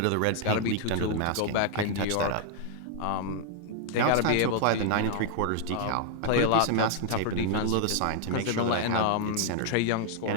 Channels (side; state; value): both; different; correlation 0.00